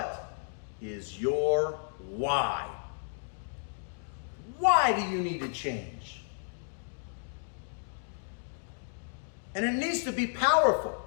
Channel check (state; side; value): silent; right; digital silence